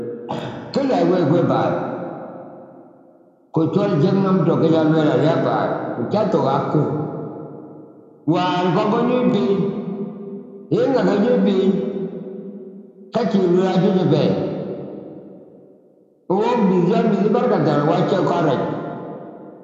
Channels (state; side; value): identical; both; correlation 1.00